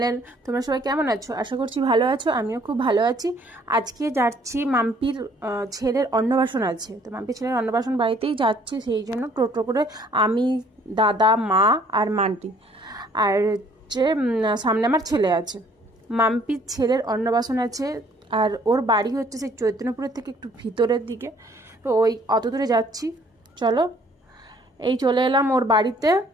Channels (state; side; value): normal; both; correlation 0.60